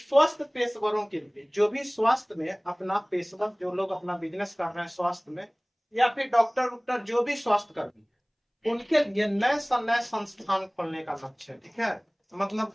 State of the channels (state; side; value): identical; both; correlation 1.00